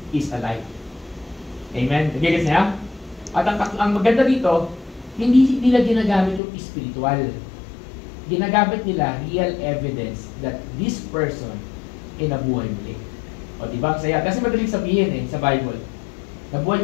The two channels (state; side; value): drops out; right; at 6.4 s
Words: is alive. Amen? Nagigits niya? At ang maganda dito, hindi nila ginagamit yung spiritual. Ginagamit nila real evidence that this person ay nabuhay muli. O diba? Saya. Kasi madaling sabihin sa Bible, nabuhay